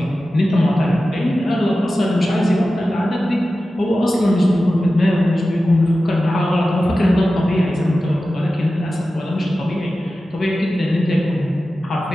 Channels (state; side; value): normal; both; correlation 0.94